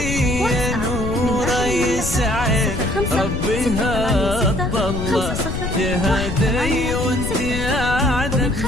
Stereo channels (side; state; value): left; noise; rumble, 4 dB below the sound